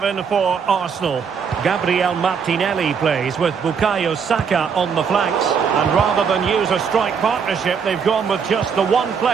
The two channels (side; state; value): left; quieter; 6.5 dB